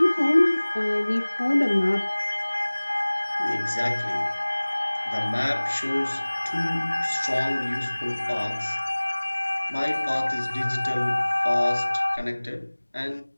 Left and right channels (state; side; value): inverted; both; correlation -1.00